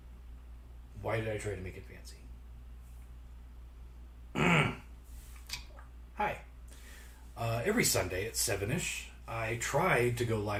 Why did I try to make it fancy? Hi. Every Sunday at 7-ish, I try to go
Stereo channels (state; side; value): identical; both; correlation 1.00